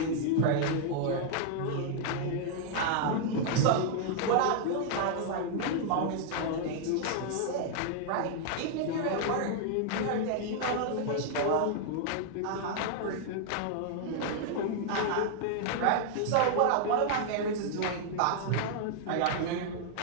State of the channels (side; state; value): both; different; correlation 0.00